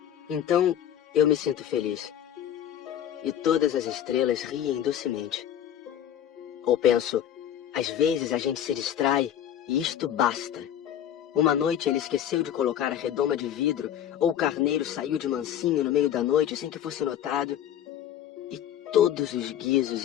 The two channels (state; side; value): quieter; right; 10.4 dB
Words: Então eu me sinto feliz. E todas as estrelas riem docemente. Ou penso, às vezes a gente se distrai e isto basta. Uma noite ele esqueceu de colocar a redoma de vidro, ou o carneiro saiu de mansinho no meio da noite sem que fosse notado. E todos os